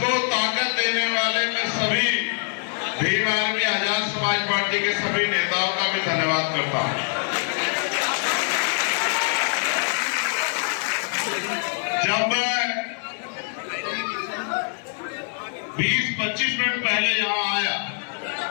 ताकत देने वाले मैं सभी भीम आर्मी आजाद समाज पार्टी के सभी नेताओं का भी धन्यवाद करता हूं। जब मैं 20-25 मिनट पहले यहां आया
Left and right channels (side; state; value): right; silent; 59 dB below the other